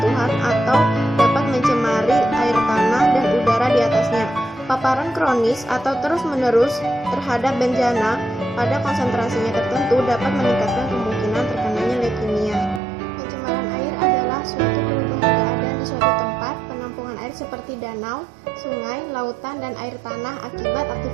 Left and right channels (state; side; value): drops out; left; at 12.8 s